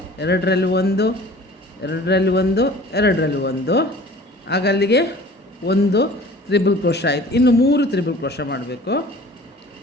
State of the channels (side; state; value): both; normal; correlation 0.46